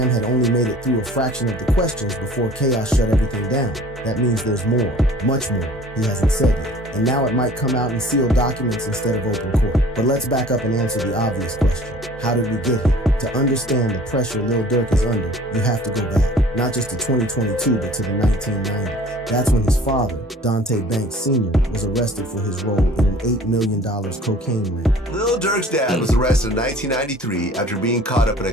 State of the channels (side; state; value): both; normal; correlation 0.49